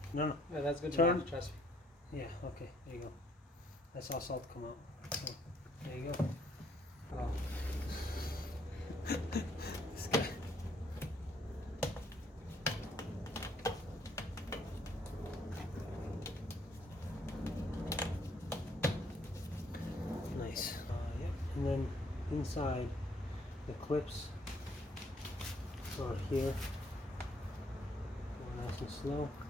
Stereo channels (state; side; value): normal; both; correlation 0.66